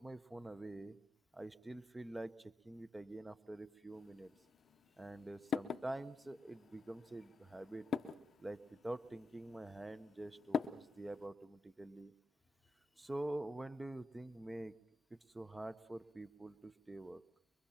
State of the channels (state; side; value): normal; both; correlation 0.88